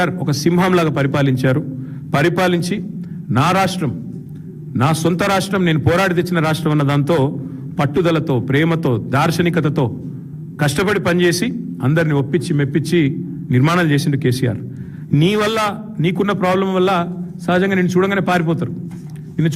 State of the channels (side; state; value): both; identical; correlation 1.00